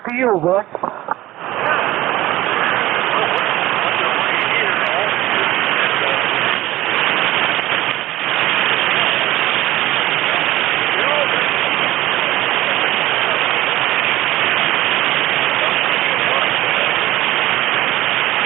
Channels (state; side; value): quieter; left; 16.3 dB